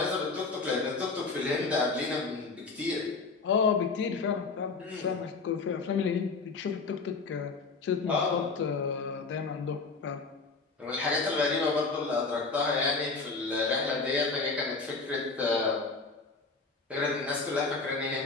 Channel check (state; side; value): quieter; right; 4.2 dB